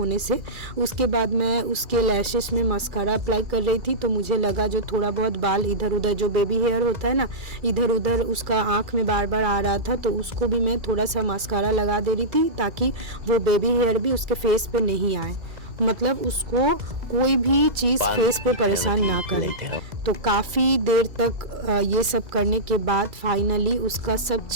से। उसके बाद मैं उसके लैशेस में मस्कारा अप्लाई कर रही थी, तो मुझे लगा जो थोड़ा बहुत बाल इधर उधर, जो बेबी हेयर होता है ना, इधर उधर उसका आँख में बार बार आ रहा था, तो उसको भी मैं थोड़ा सा मस्कारा लगा दे रही थी ताकि वो बेबी हेयर भी उसके फेस पे नहीं आए, मतलब उसको कोई भी चीज़ फेस पे परेशान ना करे। तो काफ़ी देर तक ये सब करने के बाद फाइनली उसका सब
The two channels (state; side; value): late; left; 2.3 ms